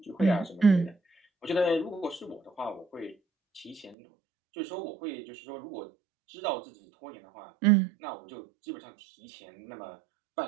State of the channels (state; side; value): drops out; left; at 4.0 s